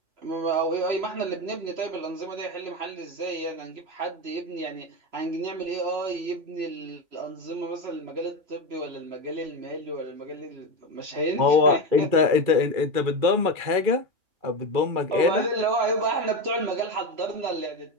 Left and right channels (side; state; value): left; late; 2.4 ms